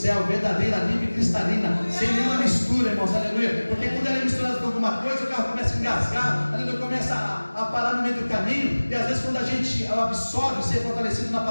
verdadeira, limpa e cristalina, sem nenhuma mistura, irmãos, aleluia. Porque quando ela é misturada com alguma coisa, o carro começa a engasgar, aleluia, começa a parar no meio do caminho. E às vezes quando a gente absorve, ser fortalecido na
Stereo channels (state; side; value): inverted; both; correlation -1.00